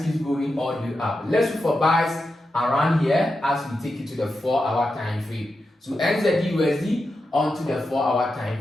keeps going all the way up. Let's look for buys around here as we take it to the 4-hour time frame. So NZD USD onto the 4-hour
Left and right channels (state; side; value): normal; both; correlation 0.89